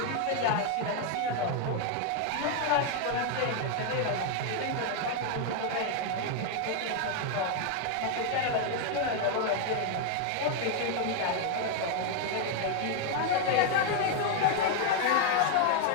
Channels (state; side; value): different; both; correlation 0.00